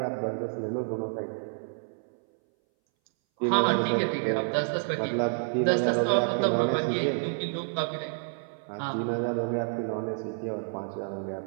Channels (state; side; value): silent; left; 59 dB below the other